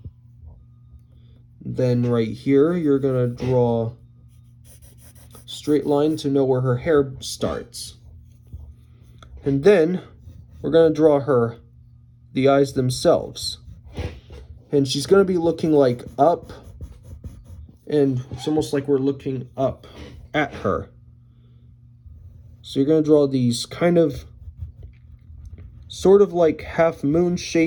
Then right here, you're going to draw a straight line to know where her hair starts. And then we're going to draw the eyes themselves. And she's going to be looking like up, and it's almost like we're looking up at her. So you're going to draw these kind of sort of like half moon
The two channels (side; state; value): both; identical; correlation 1.00